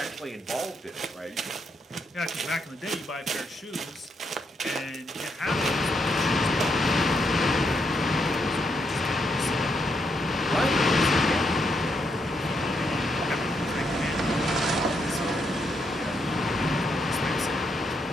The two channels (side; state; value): both; normal; correlation 0.78